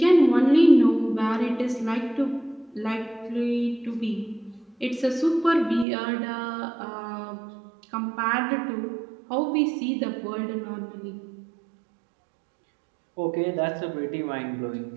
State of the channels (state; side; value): drops out; left; at 5.9 s